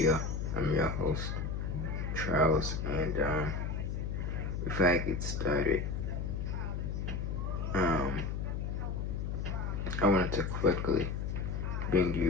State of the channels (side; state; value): left; noise; hum, 2 dB below the sound